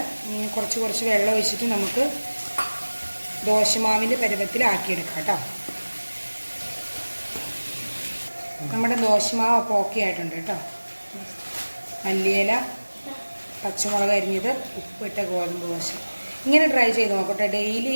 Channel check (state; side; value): inverted; both; correlation -1.00